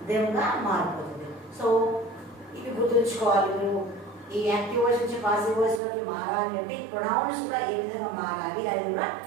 దెమ్ గా మారిపోతుంది. సో ఇవి గుర్తుంచుకోవాలి మీరు. ఈ యాక్టివ్ వాయిస్ నుంచి పాసివ్ వాయిస్ లోకి మారాలి అంటే ఈ ప్రొనౌన్స్ కూడా ఏ విధంగా మారాలి, అది కూడా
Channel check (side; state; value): left; drops out; at 5.8 s